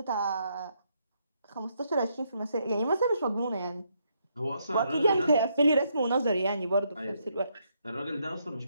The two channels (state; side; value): inverted; both; correlation -0.76